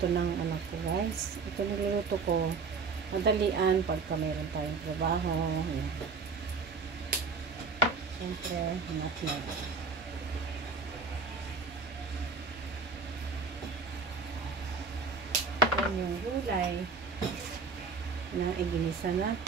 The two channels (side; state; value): left; quieter; 4.6 dB